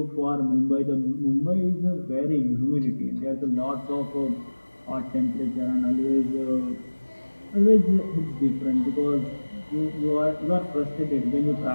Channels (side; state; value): both; inverted; correlation -1.00